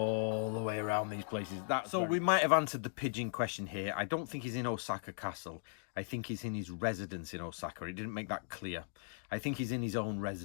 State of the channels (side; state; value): right; silent; digital silence